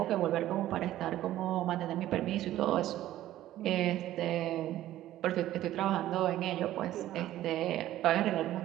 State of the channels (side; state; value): left; quieter; 13.9 dB